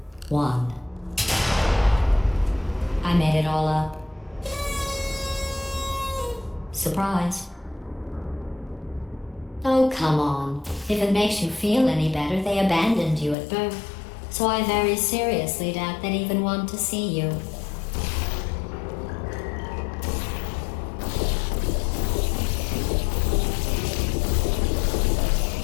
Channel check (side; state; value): right; drops out; at 13.4 s